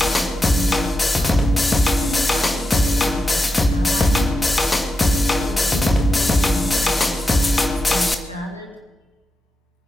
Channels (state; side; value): normal; both; correlation 0.89